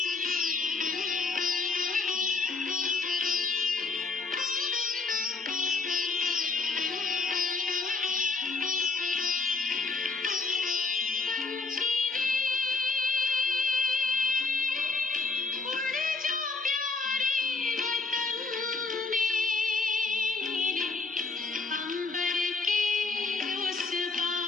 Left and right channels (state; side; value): quieter; right; 4.2 dB